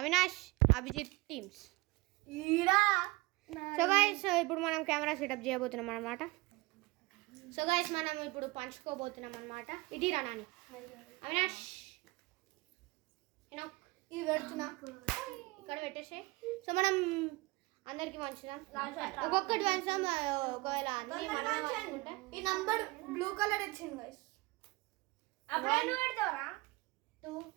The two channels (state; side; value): quieter; left; 22.9 dB